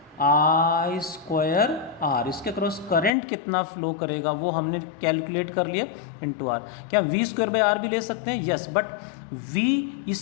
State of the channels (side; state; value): right; drops out; at 3.1 s